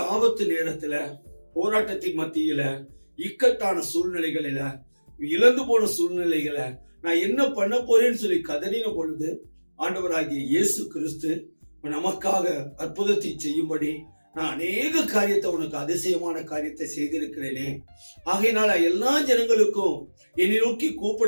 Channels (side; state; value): both; inverted; correlation -1.00